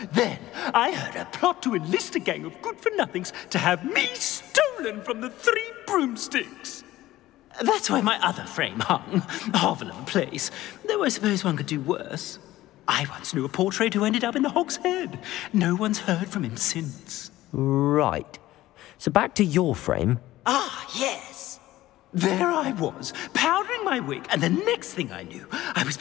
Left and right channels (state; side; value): quieter; right; 15.9 dB